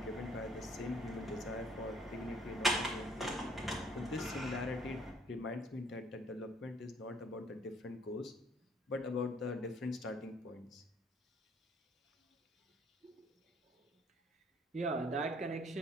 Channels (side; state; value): both; normal; correlation 0.60